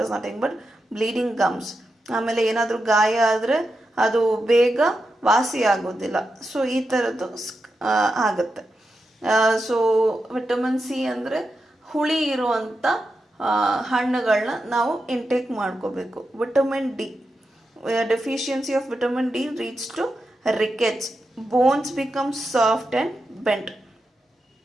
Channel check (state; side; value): normal; both; correlation 0.88